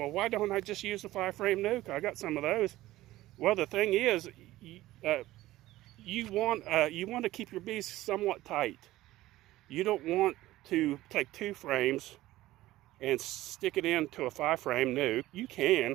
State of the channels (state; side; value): quieter; left; 16.4 dB